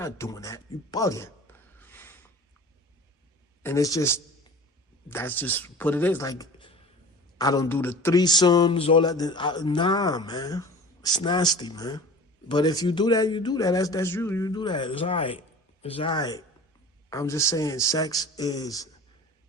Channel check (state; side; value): normal; both; correlation 0.39